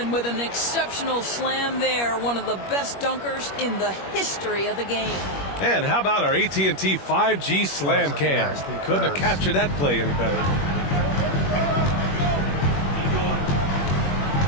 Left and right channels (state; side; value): late; right; 21 ms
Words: with an exceptional slam there. One of the best dunkers in the history of the game. And how about our AT&T 5G slam cam? Couldn't have captured that play any better.